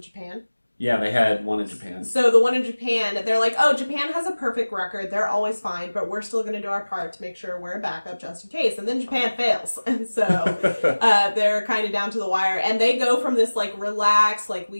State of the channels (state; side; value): inverted; both; correlation -1.00